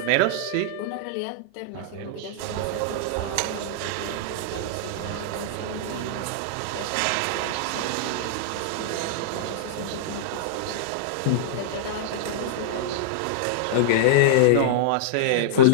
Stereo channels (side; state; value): both; different; correlation -0.02